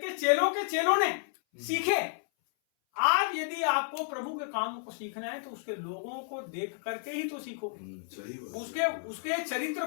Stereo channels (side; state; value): right; silent; 57 dB below the other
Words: के चेलों ने सीखे। आज यदि आपको प्रभु के कामों को सीखना है तो उसके लोगों को देख करके ही तो सीखोगे। उसके चरित्र